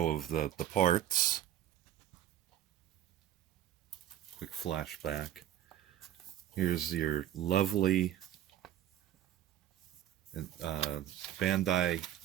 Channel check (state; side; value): quieter; left; 11.7 dB